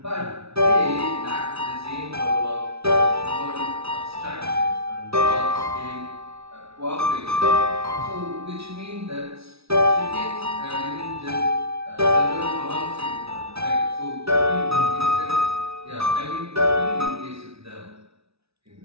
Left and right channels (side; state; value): left; late; 0.78 ms